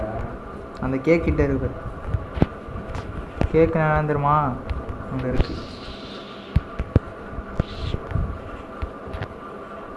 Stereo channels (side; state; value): both; identical; correlation 1.00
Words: அந்த கேக் கிட்ட இருக்கு. கேக்கு நான் தெரியுமா? அங்கே இருக்கு.